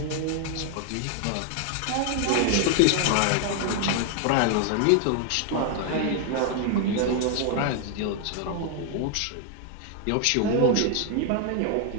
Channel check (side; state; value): both; different; correlation 0.00